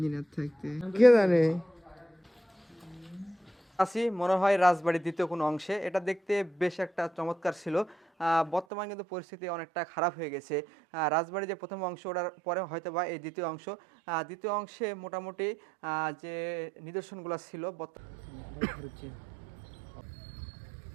থাকতে কে জানে। আসি মনে হয় রাজবাড়ির দ্বিতীয় কোনো অংশে, এটা দেখতে বেশ একটা চমৎকার ছিল। বর্তমান কিন্তু পরিস্থিতি অনেকটা খারাপ হয়ে গেছে। রাজবাড়ির যে প্রথম অংশ ওটার পরে হয়তো বা এই দ্বিতীয় অংশ, দ্বিতীয় অংশে মোটামুটি যে নিদর্শনগুলো ছিল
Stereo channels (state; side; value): drops out; left; at 8.7 s